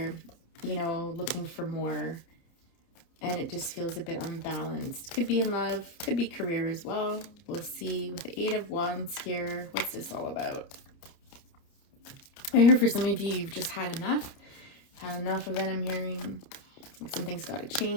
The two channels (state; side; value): late; right; 30 ms